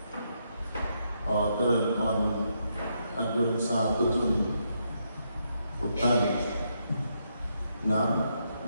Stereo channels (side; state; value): both; inverted; correlation -0.79